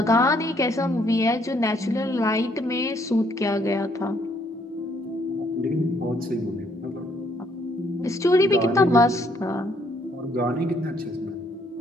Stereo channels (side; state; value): both; normal; correlation 0.68